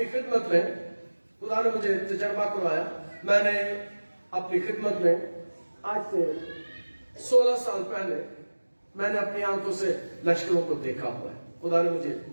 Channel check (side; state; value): both; inverted; correlation -1.00